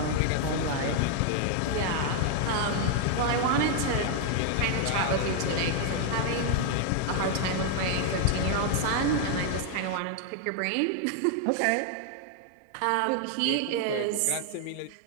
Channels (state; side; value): different; both; correlation 0.00